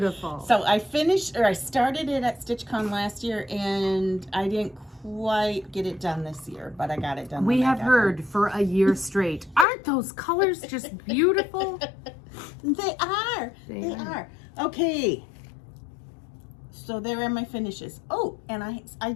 So I finished, or I started it at StitchCon last year, and I didn't quite get it done this year, but I got it done. We have heard for a year straight. Aren't those colors just beautiful? They are. They are. Okay. So there are my finishes. Oh, and I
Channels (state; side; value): drops out; right; at 9.7 s